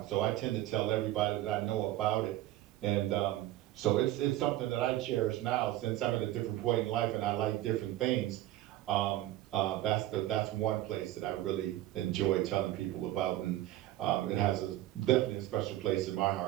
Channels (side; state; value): left; quieter; 14.9 dB